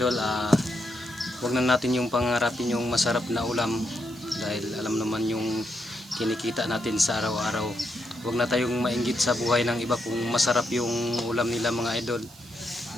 Wag na natin yung pangarapin yung masarap na ulam dahil alam naman yung kinikita natin sa araw-araw. Huwag na tayong mainggit sa buhay ng iba kung masarap yung ulam nila mga idol,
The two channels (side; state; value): right; noise; hiss, 21 dB below the sound